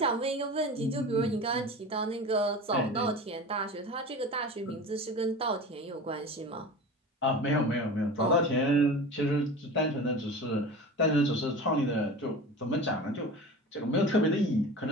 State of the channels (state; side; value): normal; both; correlation 0.33